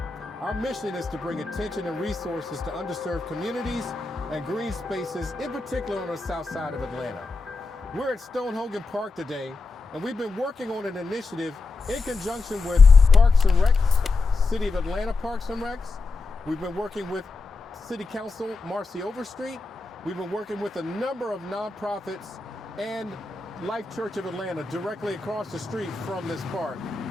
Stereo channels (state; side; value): quieter; right; 3.9 dB